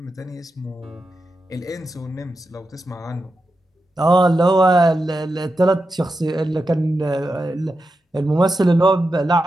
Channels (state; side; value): normal; both; correlation 0.89